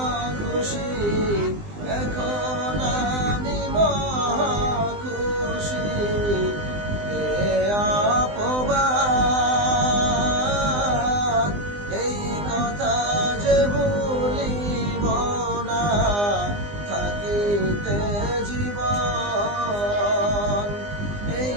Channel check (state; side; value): late; left; 20 ms